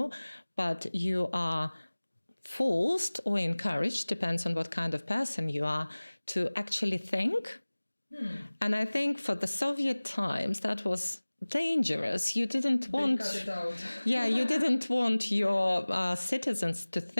but you are forced or encouraged, depends on what kind of person you are, to actually think. And I think for the Soviet times, that was dangerous. You didn't want... They cut it out. Yeah, you didn't want your citizens to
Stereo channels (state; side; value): inverted; both; correlation -1.00